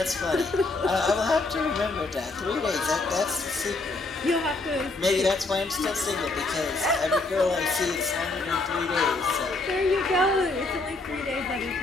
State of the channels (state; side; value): quieter; right; 3.3 dB